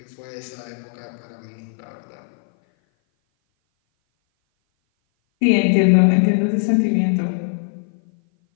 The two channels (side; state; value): right; silent; 57 dB below the other